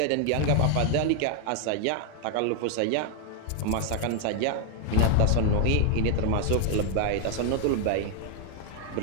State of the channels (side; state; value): both; different; correlation 0.00